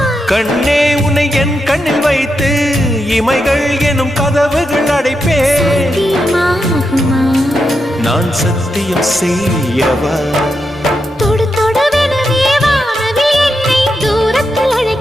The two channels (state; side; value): normal; both; correlation 0.85